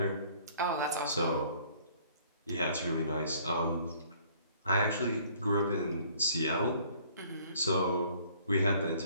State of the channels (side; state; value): both; inverted; correlation -0.57